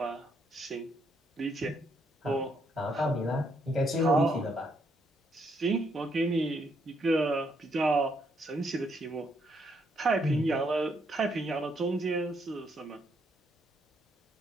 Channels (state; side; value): normal; both; correlation 0.74